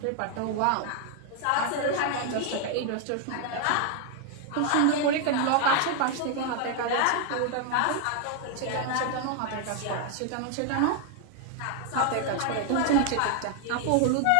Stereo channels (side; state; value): both; different; correlation 0.00